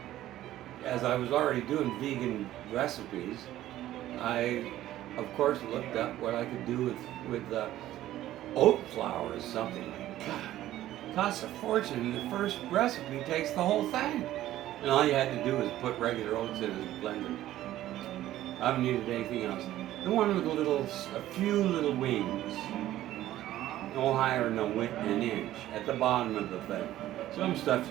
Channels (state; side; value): quieter; left; 14.0 dB